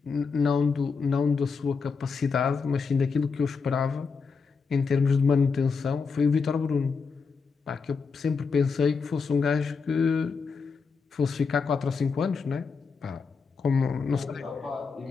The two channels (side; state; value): right; quieter; 5.2 dB